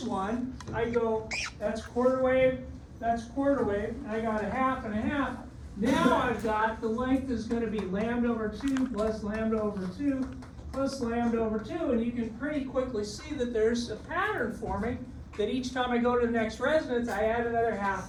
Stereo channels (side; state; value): both; identical; correlation 1.00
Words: one, I go, that's quarter wave, and I got a half and a half. Now I've got the length is going to be lambda over 2 plus lambda over 2 plus lambda over 2, and you can pretty quickly see that there's a pattern forming that each time I go to the next resonance, I add another half